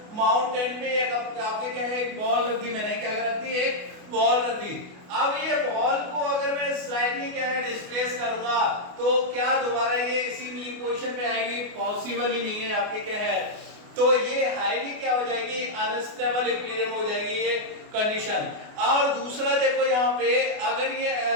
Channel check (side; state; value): left; late; 28 ms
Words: माउंटेन पे एक आपके क्या है एक बॉल रख दी, मैंने क्या रख दी, एक बॉल रख दी। अब ये बॉल को अगर मैं स्लाइडली क्या है डिस्प्लेस करूंगा तो क्या दोबारा ये इसी मीन पोजीशन पे आएगी? पॉसिबल ही नहीं है आपके क्या है। तो ये हाईली क्या हो जाएगी, अनस्टेबल इक्विलिब्रियम हो जाएगी ये कंडीशन। और दूसरा देखो यहाँ पे अगर ये